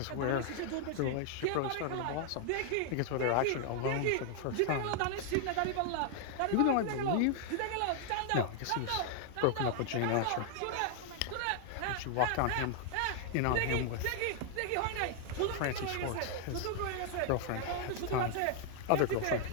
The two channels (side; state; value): both; different; correlation 0.00